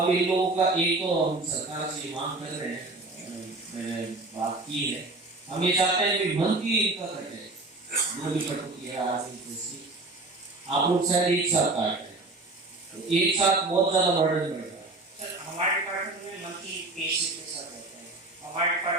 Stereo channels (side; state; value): left; quieter; 3.1 dB